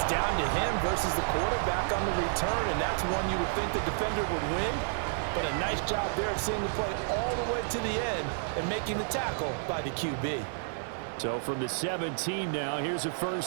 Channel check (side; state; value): left; silent; 57 dB below the other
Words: down to him versus the quarterback on the return, and that's one you would think the defender would win. But a nice job there at seeing the play all the way to the end and making the tackle by the QB. So from the 17 now, here's a